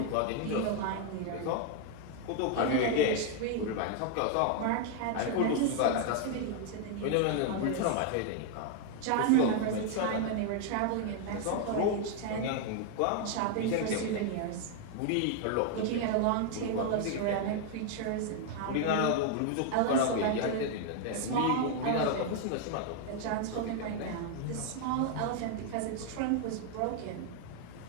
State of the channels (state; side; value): different; both; correlation 0.00